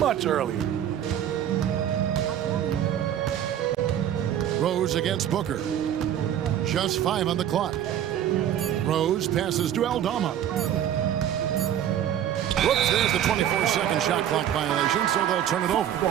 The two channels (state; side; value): quieter; left; 10.5 dB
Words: earlier. Rose against Booker. Just 5 on the clock. Rose passes to Aldama. Whoops, there's the 24-second shot clock violation, so they'll turn it over.